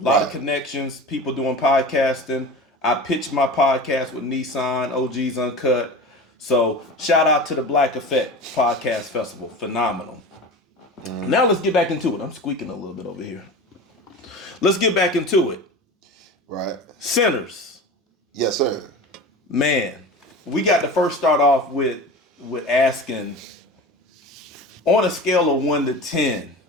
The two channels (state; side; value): normal; both; correlation 0.32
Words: A lot of connections, people doing podcasting. I pitched my podcast with Nissan, OG's Uncut. So shout out to the Black Effect Podcast Festival. Phenomenal. Now let's get back into it. I'm squeaking a little bit over here. Let's get back into it. Right. Sinners. Yes, sir. Man, we got to first start off with asking, on a scale of 1 to 10,